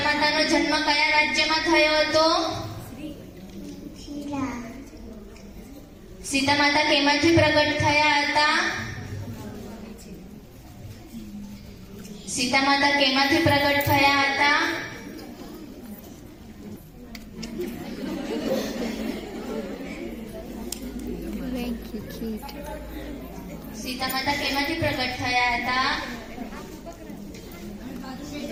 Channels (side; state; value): both; identical; correlation 1.00